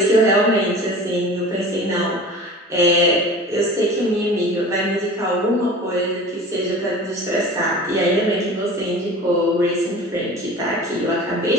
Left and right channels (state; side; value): normal; both; correlation 0.39